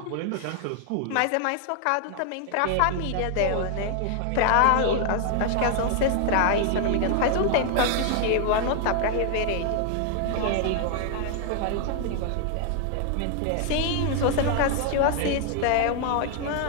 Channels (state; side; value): different; both; correlation 0.00